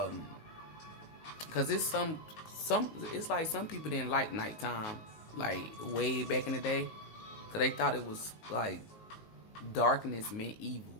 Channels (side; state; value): right; late; 19 ms